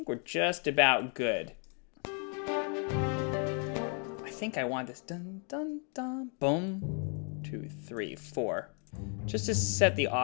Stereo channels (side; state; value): right; quieter; 39.8 dB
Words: we're just about good. I think I want this dun dun dun boom 2 3 4 just to set the